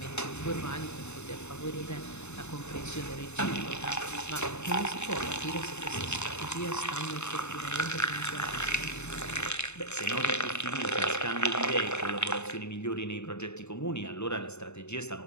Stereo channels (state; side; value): late; right; 0.82 ms